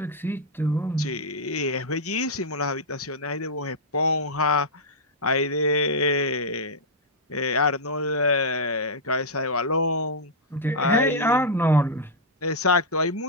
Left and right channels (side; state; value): both; normal; correlation -0.05